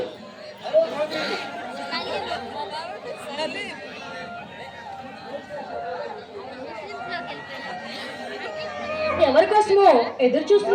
ఎవరి కోసమో ఎదురు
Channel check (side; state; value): both; identical; correlation 1.00